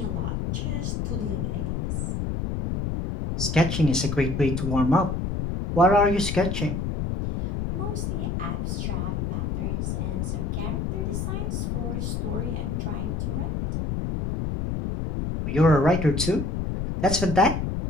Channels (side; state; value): left; noise; rumble, 1 dB below the sound